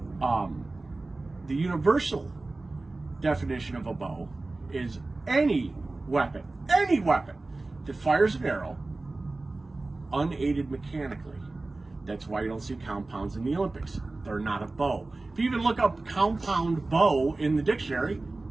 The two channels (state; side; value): quieter; left; 3.2 dB